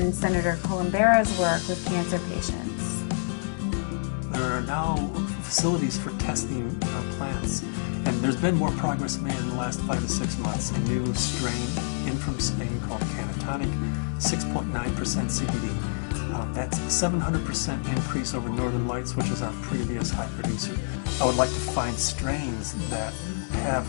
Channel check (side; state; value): right; silent; 58 dB below the other